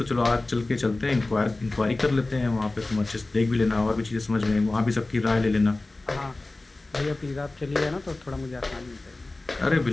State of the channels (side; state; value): right; quieter; 3.0 dB